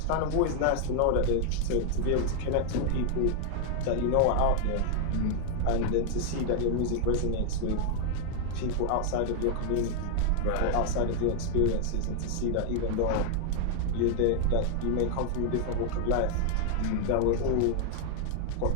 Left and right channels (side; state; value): both; different; correlation 0.00